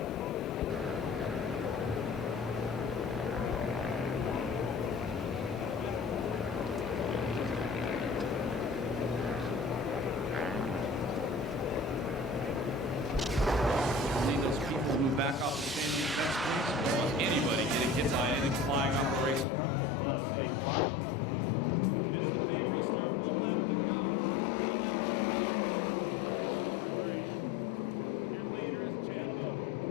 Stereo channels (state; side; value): drops out; right; at 19.5 s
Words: See those people move back off the standing fence. Anybody getting hit by anything flying off the racetrack? It's not a safe spot. Vista Pay restart, 1 lap to go. 1 lap down, 9 to go. Heat race number 3. Your leader is Chad Boat.